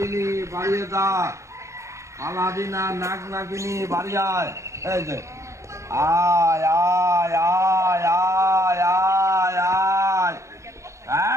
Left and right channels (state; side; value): late; left; 0.14 ms